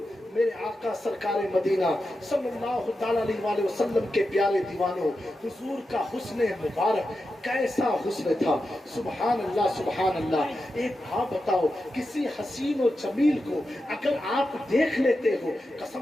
मेरे आका सरकार मदीना सल्लल्लाहु ताला अलैहि वसल्लम के प्यारे दीवानों, हुजूर का हुस्न मुबारक कैसा हुस्न था। सुभान अल्लाह सुभान अल्लाह। एक बात बताओ, किसी हसीन और जमील को अगर आप देख लेते हो,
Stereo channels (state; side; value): normal; both; correlation 0.90